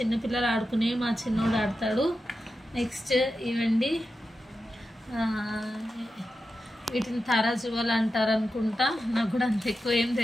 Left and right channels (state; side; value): normal; both; correlation 0.90